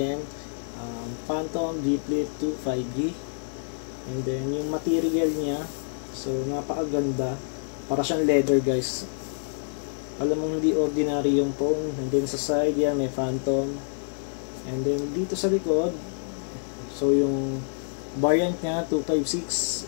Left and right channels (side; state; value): right; silent; digital silence